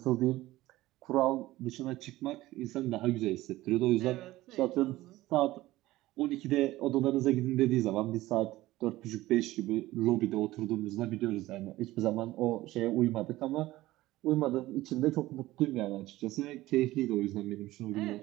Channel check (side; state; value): left; quieter; 17.1 dB